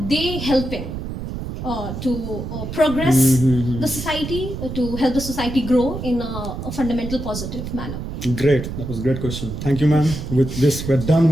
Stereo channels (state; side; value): noise; right; rumble, 7 dB below the sound